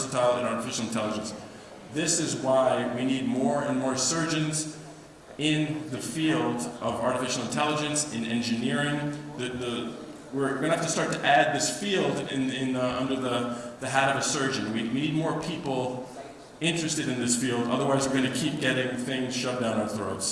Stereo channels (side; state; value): both; identical; correlation 1.00